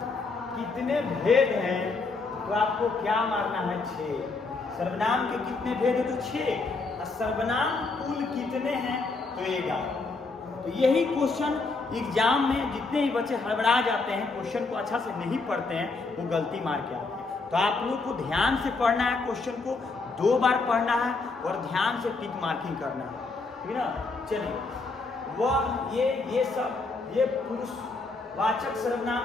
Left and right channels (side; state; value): right; quieter; 3.8 dB